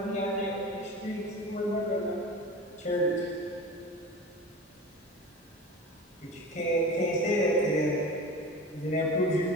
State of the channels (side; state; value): both; normal; correlation 0.33